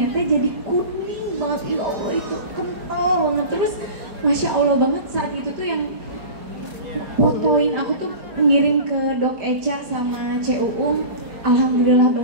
teh jadi kuning banget. Ya Allah, itu kental banget. Terus Masya Allah banget saat itu tuh yang fotoin aku tuh ngirim ke Dok Eca sama CUU. Alhamdulillah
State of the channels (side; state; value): left; late; 4.3 ms